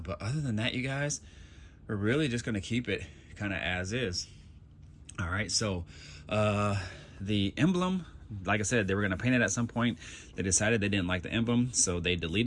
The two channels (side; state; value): both; identical; correlation 1.00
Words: but other than that, you guys, we're really just going to keep it kind of as is. All right, so the emblem, like I said, they were going to paint it at some point. They decided they didn't like the emblem, so they